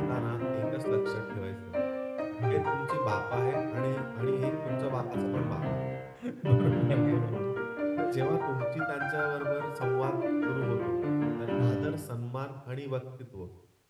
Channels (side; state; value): both; identical; correlation 1.00